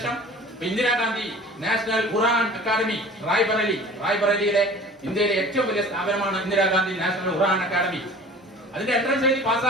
ഇന്ദിരാഗാന്ധി നാഷണൽ ഖുറാൻ അക്കാദമി റായ്ബറേലിയിലെ ഇന്ത്യയിലെ ഏറ്റവും വലിയ സ്ഥാപനമാണ് ഇന്ദിരാഗാന്ധി നാഷണൽ ഖുറാൻ അക്കാദമി. അതിന്റെ എൻട്രൻസ് എഴുതി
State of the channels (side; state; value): both; normal; correlation 0.44